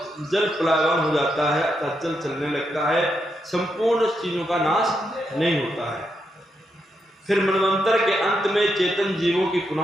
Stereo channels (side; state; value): both; normal; correlation 0.82